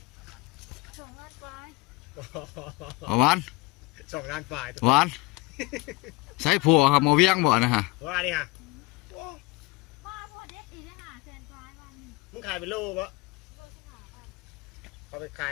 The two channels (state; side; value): quieter; right; 22.2 dB